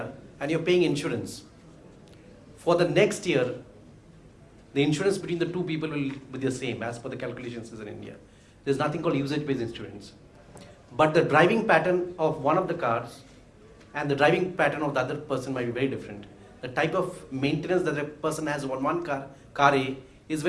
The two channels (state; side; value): identical; both; correlation 1.00